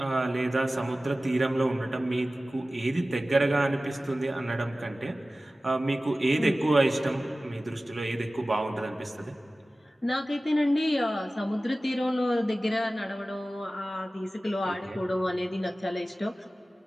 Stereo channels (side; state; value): both; normal; correlation 0.96